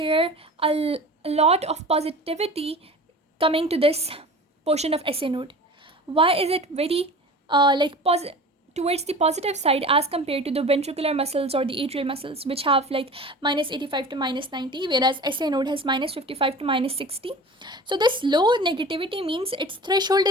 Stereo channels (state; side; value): normal; both; correlation 0.38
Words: a lot of positivity coming to this portion of SA node? Why is it very towards the positive side as compared to the ventricular muscles or the atrial muscles, which have like minus 85 to minus 90, whereas SA node has minus 55 to minus 60? So this low negativity means its threshold